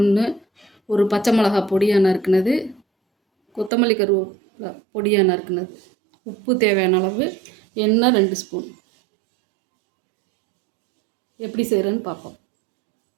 ஒரு பச்சை மிளகா பொடியாக நறுக்குனது, கொத்தமல்லி கருவேப்பிலை பொடியாக நறுக்குனது, உப்பு தேவையான அளவு, எண்ணெய் 2 ஸ்பூன். எப்படி செய்கிறேன்னு பார்ப்போம்.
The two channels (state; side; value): drops out; left; at 3.7 s